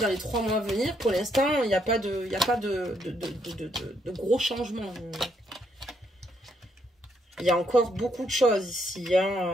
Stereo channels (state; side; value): normal; both; correlation 0.74